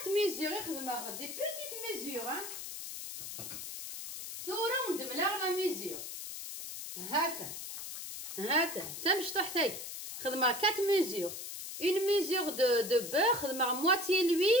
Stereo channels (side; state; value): left; noise; hiss, 8 dB below the sound